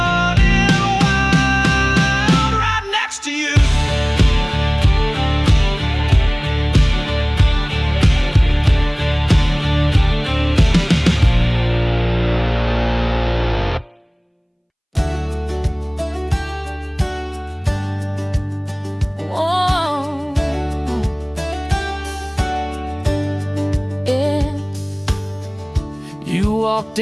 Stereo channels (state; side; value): identical; both; correlation 1.00